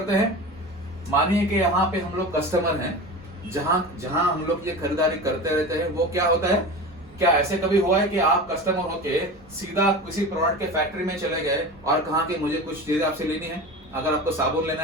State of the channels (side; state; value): both; normal; correlation 0.31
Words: हैं। मानिए कि यहाँ पे हम लोग कस्टमर हैं, जहां हम लोग ये खरीदारी करते रहते हैं, वो क्या होता है, क्या ऐसे कभी हुआ है कि आप कस्टमर होके सीधा किसी प्रोडक्ट के फैक्ट्री में चले गए और कहा कि मुझे कुछ चीजें आपसे लेनी है। अगर आपको साबुन लेना